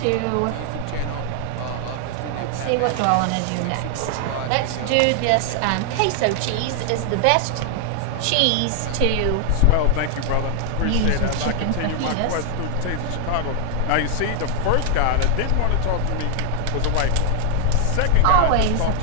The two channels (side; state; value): both; different; correlation 0.00